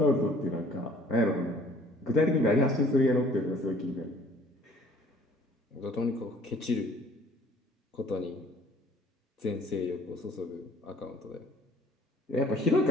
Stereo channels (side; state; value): both; normal; correlation 0.55